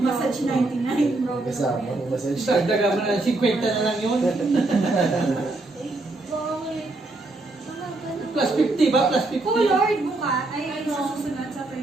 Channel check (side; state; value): left; quieter; 3.0 dB